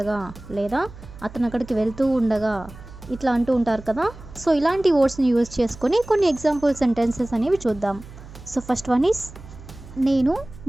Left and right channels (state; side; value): noise; right; hum, 17 dB below the sound